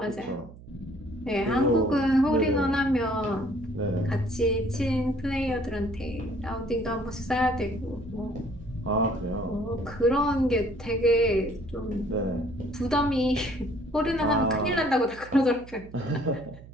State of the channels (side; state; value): right; noise; hum, 18 dB below the sound